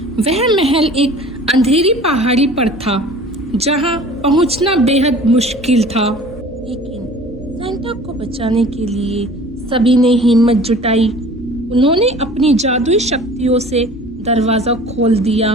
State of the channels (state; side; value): normal; both; correlation 0.45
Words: वह महल एक अंधेरी पहाड़ी पर था जहां पहुंचना बेहद मुश्किल था। लेकिन सेंटा को बचाने के लिए सभी ने हिम्मत जुटाई। उन्होंने अपनी जादुई शक्तियों से दरवाजा खोल दिया।